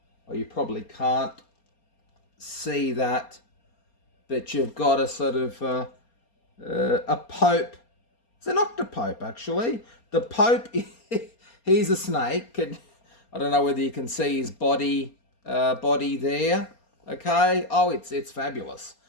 or you probably can't see that, but you've got a sort of a pope. It's an octopope, actually. The pope, he's a snake. I don't know whether you can see his body there. Okay. Oh, it's fabulous.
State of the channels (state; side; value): late; right; 4.3 ms